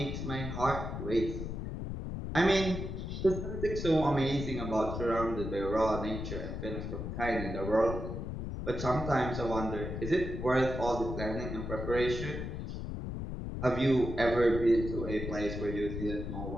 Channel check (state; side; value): noise; left; rumble, 5 dB below the sound